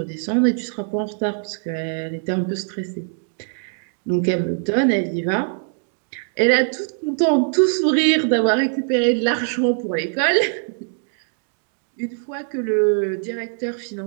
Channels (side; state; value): left; silent; 63 dB below the other